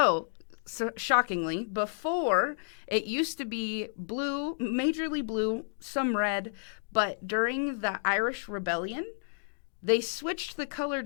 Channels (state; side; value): silent; right; digital silence